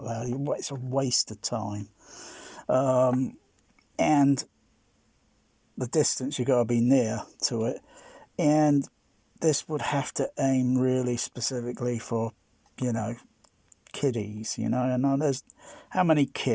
loud. It's a waste of time. And the distance, you got to be near to it, and this would have to aim really specifically for kiddies, and there's how many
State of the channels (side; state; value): both; identical; correlation 1.00